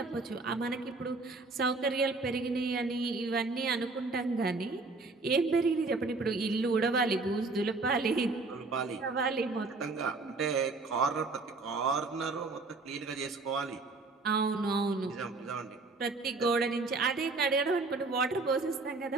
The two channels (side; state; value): left; quieter; 3.7 dB